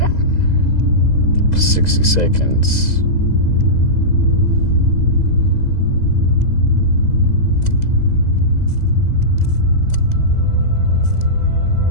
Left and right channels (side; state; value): right; late; 2.0 ms